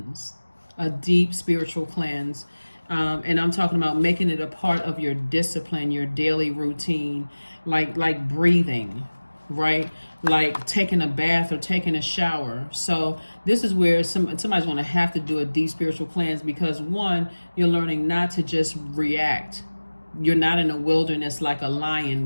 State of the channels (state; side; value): inverted; both; correlation -1.00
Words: A deep spiritual cleanse. And I'm talking about making it a part of your discipline, your daily routine, like breathing, right? Like taking a bath or taking a shower. So this is where somebody's going to have to do a deep spiritual cleanse, because one, you're learning not to just react. You're not in a wilderness like a lion